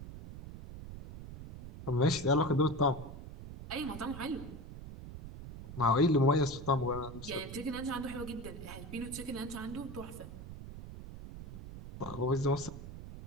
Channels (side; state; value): right; noise; rumble, 12 dB below the sound